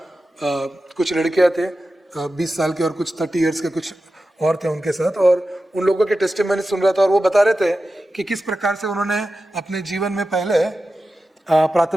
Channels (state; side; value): normal; both; correlation 0.92